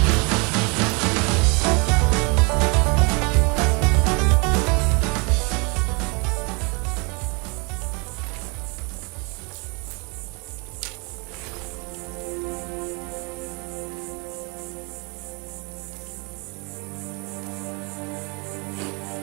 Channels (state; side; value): quieter; left; 30.3 dB